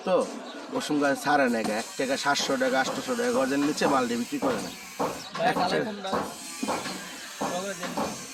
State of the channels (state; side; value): identical; both; correlation 1.00